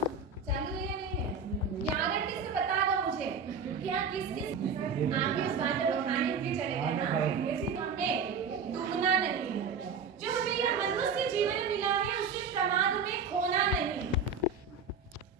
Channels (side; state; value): left; quieter; 5.2 dB